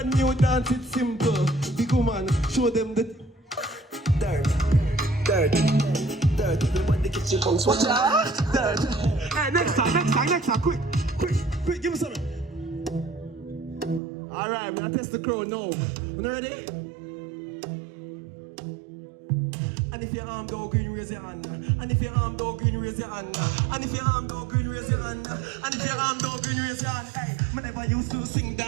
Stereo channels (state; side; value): drops out; left; at 14.0 s